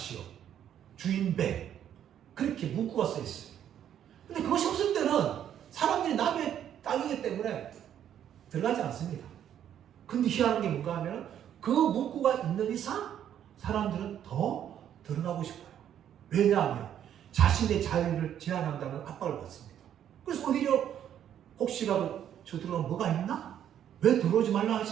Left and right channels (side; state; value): left; quieter; 10.0 dB